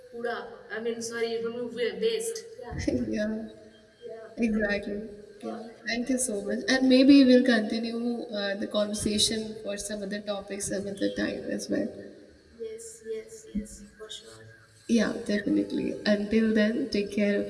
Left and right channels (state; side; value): identical; both; correlation 1.00